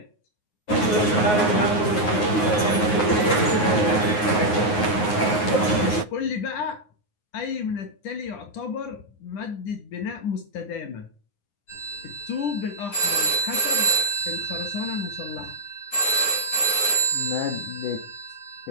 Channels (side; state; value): right; late; 9.5 ms